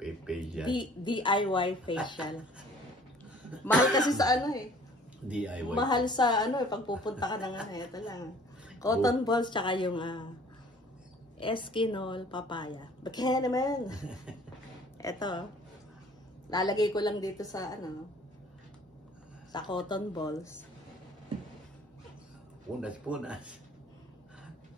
Pe-facial? DIY facial. Mahal kasi sa ano eh. DIY? Mahal sa ano eh, pagpupunta ka na nga. Ito lang. Cotton balls tsaka yung Eskinol papaya. Bakit naman? Ito. Lalagay ko lang dito sa sa cotton balls. Punas.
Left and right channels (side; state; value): both; normal; correlation 0.53